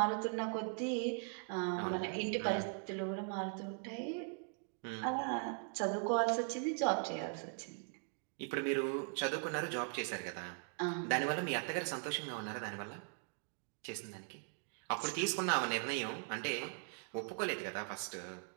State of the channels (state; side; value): silent; left; 51 dB below the other